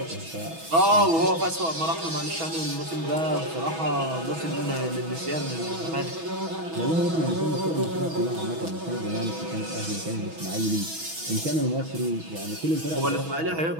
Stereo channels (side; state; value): left; late; 6.2 ms